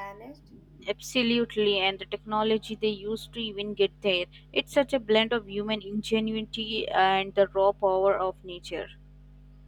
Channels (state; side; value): identical; both; correlation 1.00